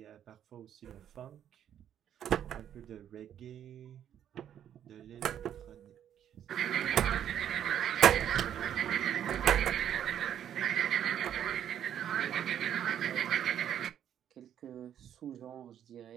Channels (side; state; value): left; quieter; 9.9 dB